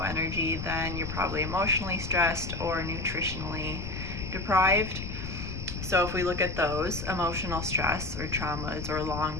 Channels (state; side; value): noise; left; rumble, 6 dB below the sound